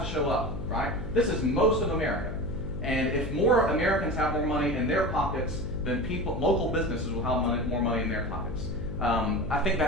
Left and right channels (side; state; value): left; noise; hum, 7 dB below the sound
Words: to show up, right? This is most of America. And if more Americans have more money in their pockets, then local businesses will have more money in their pockets. I think